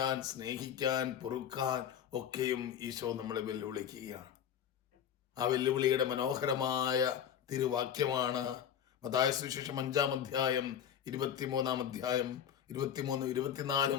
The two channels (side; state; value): right; quieter; 9.1 dB